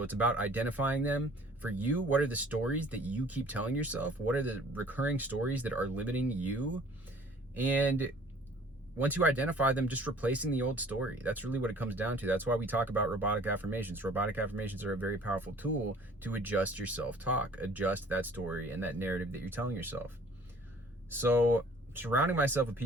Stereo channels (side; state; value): both; normal; correlation 0.52